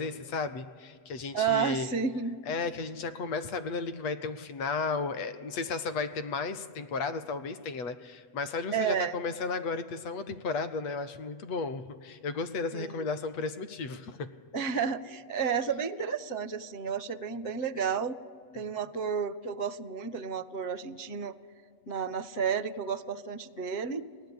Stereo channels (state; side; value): late; right; 8.2 ms